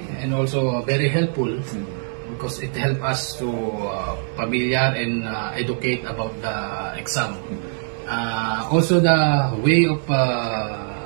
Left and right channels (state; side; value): silent; left; 59 dB below the other